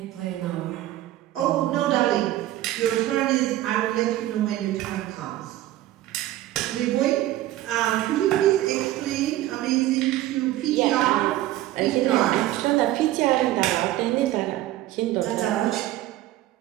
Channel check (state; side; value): quieter; left; 14.8 dB